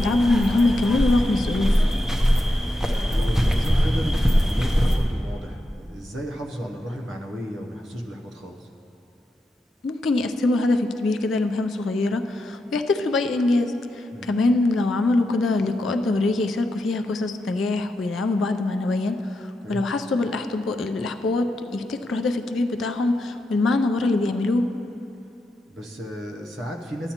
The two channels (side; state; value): both; normal; correlation 0.86